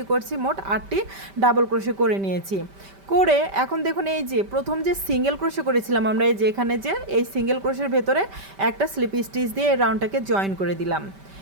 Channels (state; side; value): late; left; 5.1 ms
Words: করছি, মোট 8টি ডাবল ক্রোশে করে নিয়েছি। করে এখন দেখুন এই যে প্রথম যে সিঙ্গেল ক্রোশে করেছিলাম আমরা, এই যে এখানে যে এই সিঙ্গেল ক্রোশের ভেতরে একটা স্লিপ স্টিচ দিয়ে এই রাউন্ডটাকে জয়েন করে দিলাম।